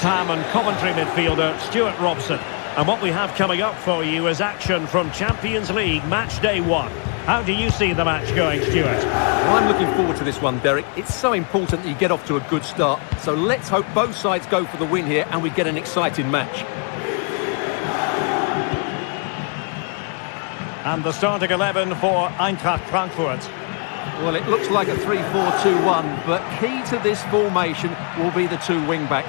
Ham and Coventry midfielder, Stuart Robson. And what we have coming up for you is action from Champions League match day 1. How do you see the match going, Stuart? Well, I'm looking forward to this one, Derek. It's so important that you get off to a good start. So let's hope both sides go for the win here and we get an exciting match. And the starting 11 for Eintracht Frankfurt. Well, it looks like a 3-4-2-1, but key to this formation will be the two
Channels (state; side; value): quieter; right; 39.6 dB